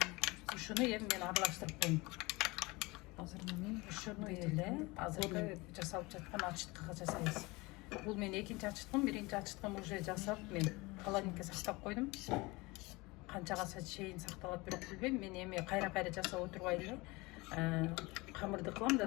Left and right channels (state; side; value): quieter; right; 23.6 dB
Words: Ушуну эми мен аралаштырып коем. Ушуну эле азыркы жасалып жаткан ачыткыга жасайбыз. Бул мен экинчи ачыткым, биринчи ачыткым уже жасап мен холодильникке сактап койдум. Канчага чейин сакталат бирок билбейм. Мен эми кайра жасап отурбай эле камырды кылам да